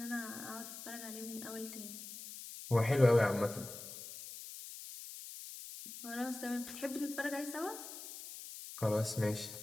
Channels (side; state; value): left; noise; hiss, 11 dB below the sound